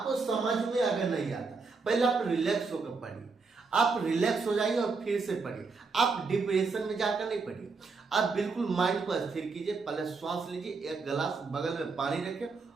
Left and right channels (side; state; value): left; quieter; 4.4 dB